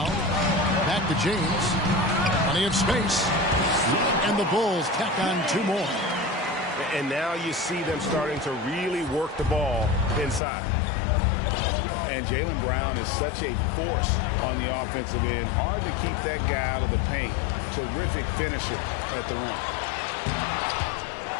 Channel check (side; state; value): right; drops out; at 10.4 s